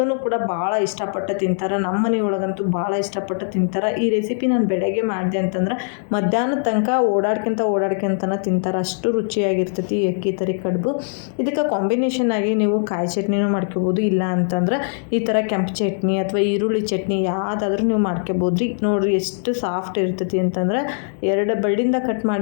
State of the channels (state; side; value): silent; right; 65 dB below the other